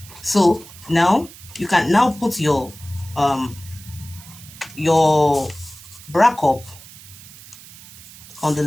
So now you can now put your bra cup on the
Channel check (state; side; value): noise; right; hiss, 19 dB below the sound